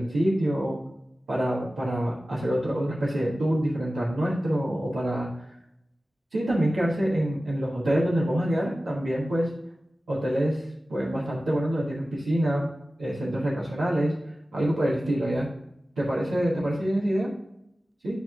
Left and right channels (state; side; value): normal; both; correlation 0.95